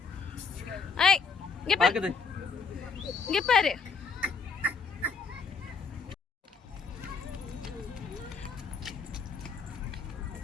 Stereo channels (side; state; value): right; quieter; 5.2 dB